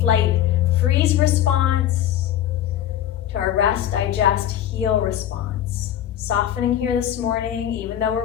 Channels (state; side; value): quieter; right; 11.3 dB